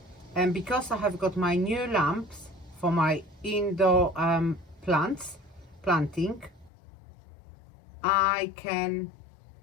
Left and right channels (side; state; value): right; drops out; at 6.7 s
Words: and because I have got my new lamps for my indoor planting, I can